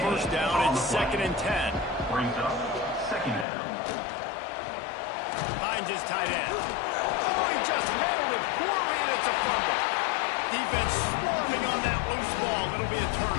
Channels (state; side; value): drops out; right; at 3.5 s